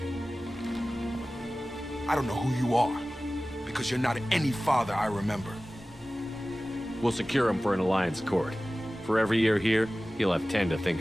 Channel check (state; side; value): normal; both; correlation 0.97